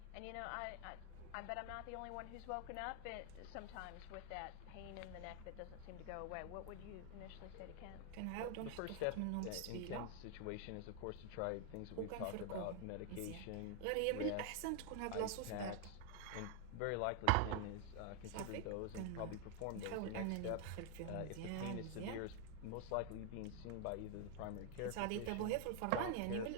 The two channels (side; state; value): both; different; correlation 0.00